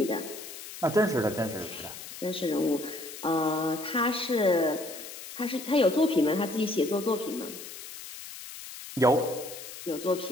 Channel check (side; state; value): left; noise; hiss, 12 dB below the sound